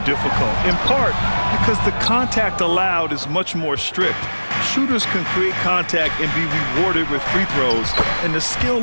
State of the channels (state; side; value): inverted; both; correlation -1.00